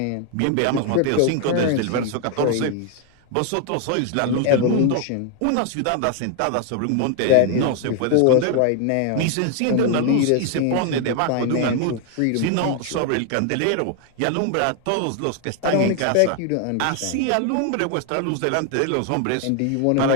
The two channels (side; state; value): both; different; correlation 0.00